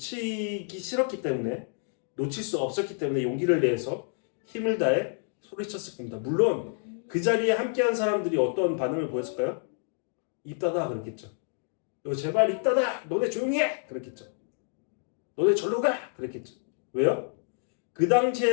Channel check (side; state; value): right; silent; 57 dB below the other